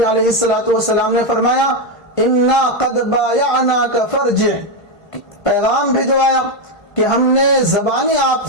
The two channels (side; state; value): right; late; 1.5 ms